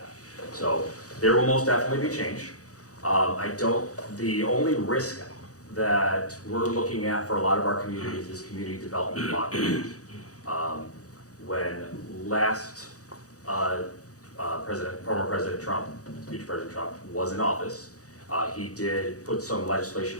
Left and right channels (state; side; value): late; right; 0.66 ms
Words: So there will most definitely be change. The only risk that we're looking at for a lot of our communities is community development blockage. When last former President Trump, future President Trump, was in office, he did put some legislation